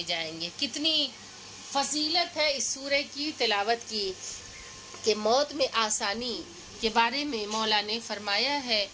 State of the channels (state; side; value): identical; both; correlation 1.00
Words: جائیں گے۔ کتنی فضیلت ہے اس سورہ کی تلاوت کی کہ موت میں آسانی کے بارے میں مولا نے فرمایا ہے